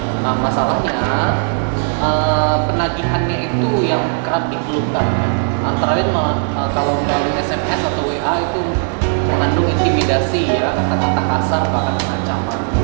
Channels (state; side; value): silent; left; 61 dB below the other